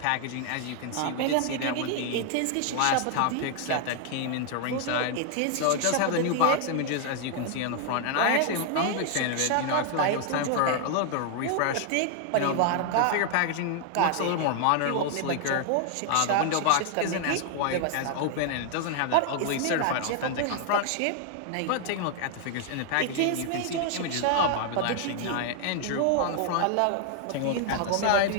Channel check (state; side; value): different; both; correlation 0.00